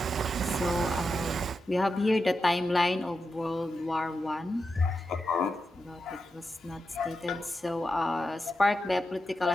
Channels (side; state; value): both; normal; correlation 0.88